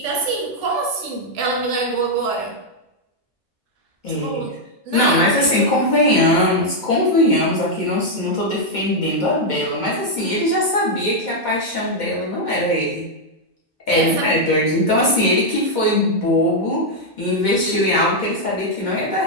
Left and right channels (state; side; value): normal; both; correlation -0.02